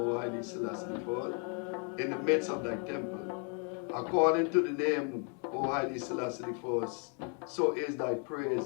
highly Selassie the First, in the midst of thy temple. According to the name, O highly Selassie the First, so is thy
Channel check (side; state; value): right; quieter; 39.6 dB